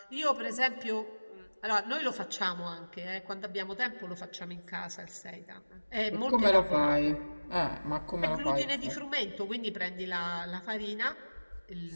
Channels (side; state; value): both; inverted; correlation -1.00